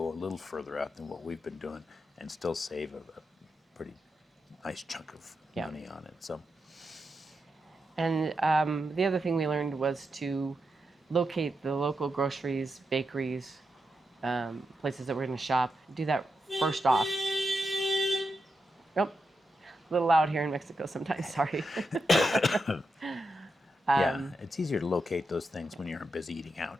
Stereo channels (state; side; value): normal; both; correlation 0.86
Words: a little further out than what we've been doing and still save a pretty nice chunk of Yeah. money on it. So And the other thing we learned was to locate the local groceries, bakeries, places that we're going to shop. Do that first off. Nope. A little loud here in Mexico sometimes, sorry. yeah, it's easier to locate those things when you're busy eating